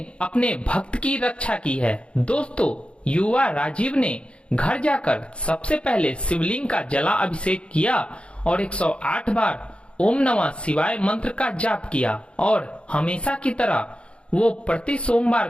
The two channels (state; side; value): late; right; 0.058 ms